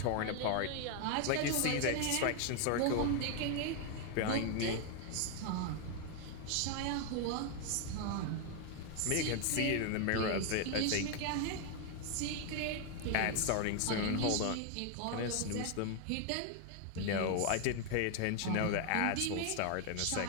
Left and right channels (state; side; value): different; both; correlation 0.01